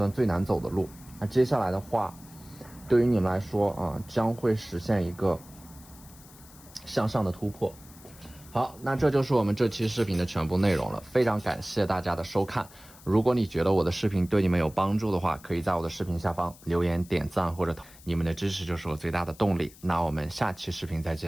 最难走的路。那接下来的话，对于你们来说将会实现一个向上的突破。好，那这就是我们这期视频的全部内容了，非常感谢大家的收看。如果你觉得我的视频对你们有帮助的话，可以在我的视频下方留言点赞或者你们的支持就是我最大的动力。那我们下期视频再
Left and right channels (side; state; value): left; noise; hiss, 22 dB below the sound